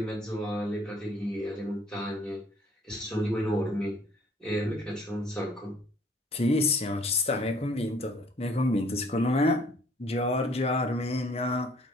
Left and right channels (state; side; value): normal; both; correlation 0.58